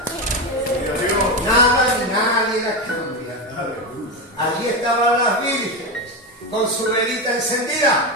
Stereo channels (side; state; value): both; normal; correlation 0.13